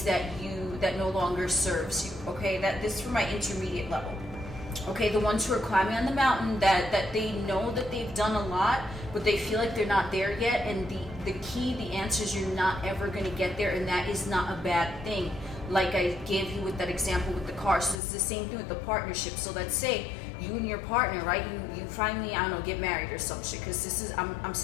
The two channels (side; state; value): right; drops out; at 18.0 s